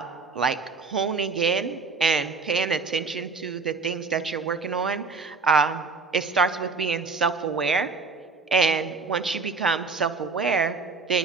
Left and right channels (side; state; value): left; quieter; 4.4 dB